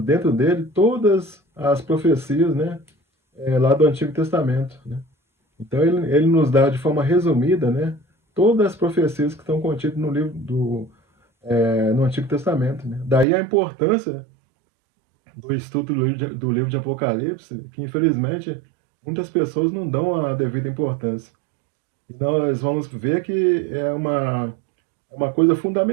dentro dele todas as profecias, né, lá do Antigo Testamento, né? Então ele nos dá de forma resumida, né, todas as profecias que estão contidas no livro no Antigo Testamento, né? Daí a importância do estudo do livro de Apocalipse, que infelizmente muitas pessoas não dão a devida importância. E nós vamos ver que é uma coisa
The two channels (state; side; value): drops out; left; at 13.2 s